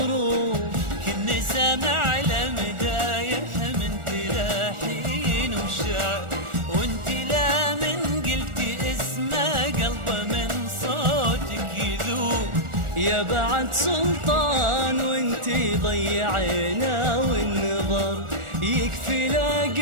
كني سامع لمدايح من تلاحين وشعر. وانت لا من قلتي اسمه قلبه من صوتك يذوب. يا بعد سلطان وانتي ضيعينا والنظر. يكفي لا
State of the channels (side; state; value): left; late; 1.4 ms